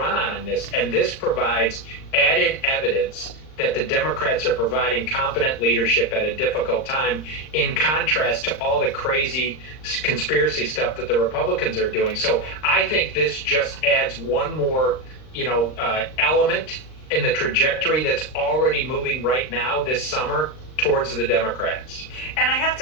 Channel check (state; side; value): late; right; 39 ms